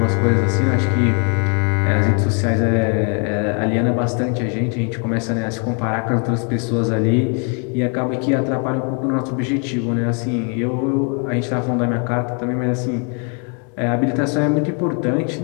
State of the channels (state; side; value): quieter; right; 38.4 dB